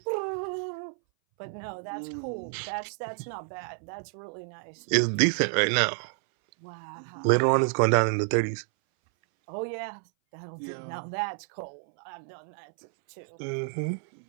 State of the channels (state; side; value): silent; left; 58 dB below the other